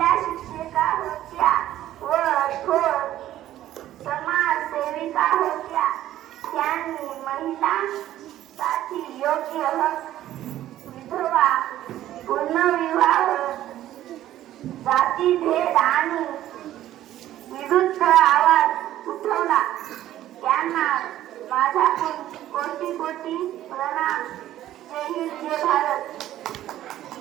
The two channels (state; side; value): quieter; left; 13.2 dB